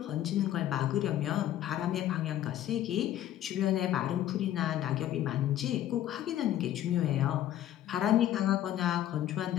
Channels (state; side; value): quieter; right; 12.4 dB